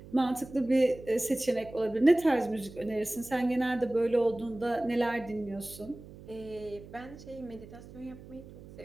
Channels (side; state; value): right; noise; hum, 17 dB below the sound